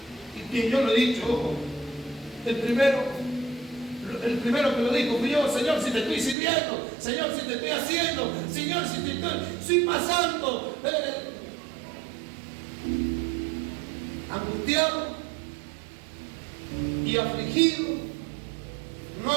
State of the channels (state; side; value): drops out; left; at 6.4 s